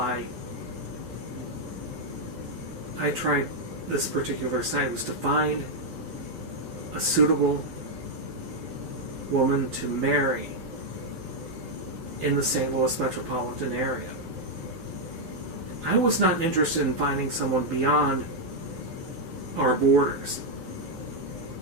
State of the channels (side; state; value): left; late; 12 ms